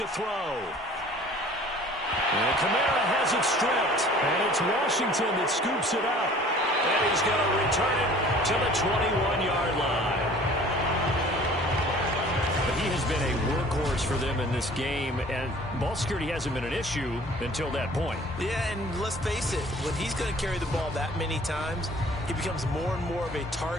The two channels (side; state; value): both; normal; correlation 0.49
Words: throw. And Kamara has it stripped. And it's Washington that scoops it up. And he's going to return it to the 21-yard line. But he has been a workhorse for them in this game, and ball security hasn't been an issue until that point. Yeah, and let's face it, when he's going to carry the ball that many times, he becomes more and more of a